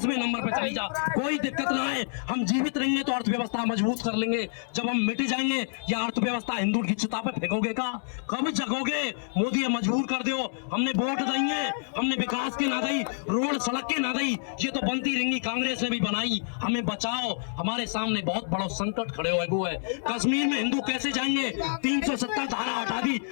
नंबर पे चली जा, कोई दिक्कत ना है, हम जीवित रहेंगे तो अर्थव्यवस्था मजबूत कर लेंगे। जब हम मिट जाएंगे या अर्थव्यवस्था हिंदू की चिता पे फेंकोगे का, कब जगोगे? मोदी मजबूर कर दो, हमने वोट देंगे, हमने विकास के ना दी, रोड सड़क के ना दी, ये तो बनती रहेंगी, कांग्रेस ने भी बनाई, हमें बचाओ। हमारे सामने बहुत बड़ा संकट खड़े हुए वो है, कश्मीर में हिंदू कैसे जाएंगे? 370 धारा हटा दी,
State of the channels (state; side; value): silent; right; digital silence